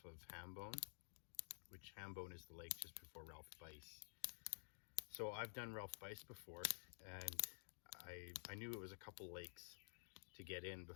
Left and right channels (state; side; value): silent; right; digital silence